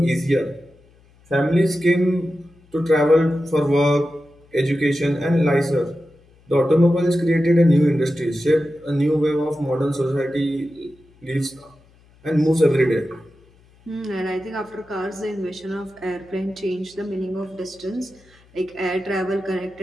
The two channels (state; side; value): noise; left; hum, 30 dB below the sound